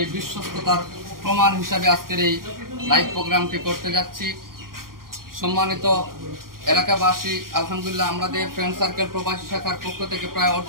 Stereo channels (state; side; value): late; left; 0.92 ms